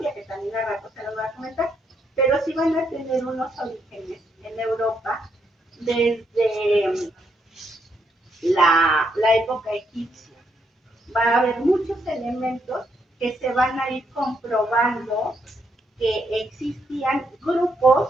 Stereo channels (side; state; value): both; normal; correlation 0.77